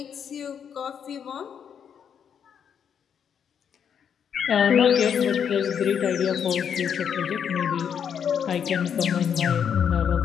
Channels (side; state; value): right; quieter; 7.9 dB